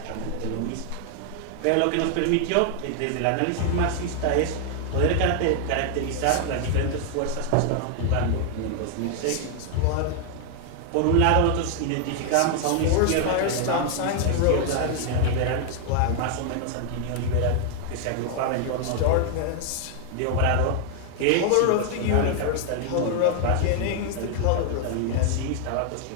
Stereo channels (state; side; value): different; both; correlation 0.00